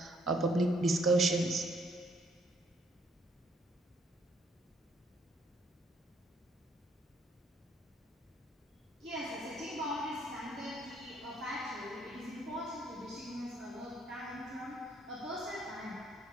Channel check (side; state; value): both; normal; correlation 0.67